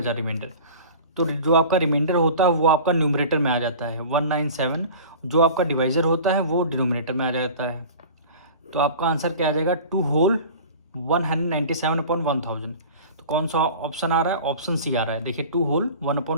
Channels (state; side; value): inverted; both; correlation -0.39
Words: रिमाइंडर। तो जो आपका रिमाइंडर होता है वो आपका न्यूमरेटर में आ जाता है 197, जो आपका डिवाइज़र होता है वो डिनोमिनेटर में आ जाता है। तो आपका आंसर क्या आ जाएगा, 2 होल 197/1000। तो कौन सा ऑप्शन आ रहा है, ऑप्शन सी आ रहा है। देखिए 2 होल